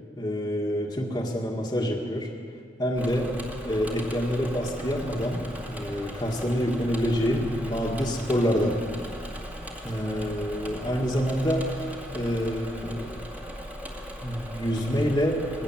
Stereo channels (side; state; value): both; normal; correlation 0.78